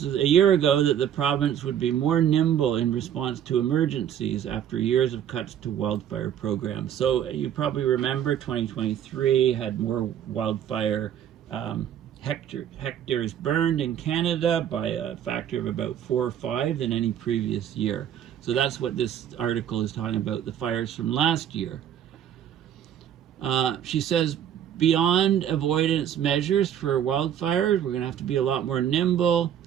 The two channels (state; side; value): quieter; left; 9.9 dB